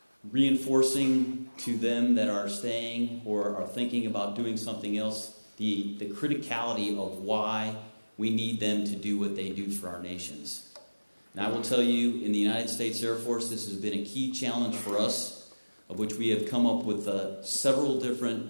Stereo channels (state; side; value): inverted; both; correlation -1.00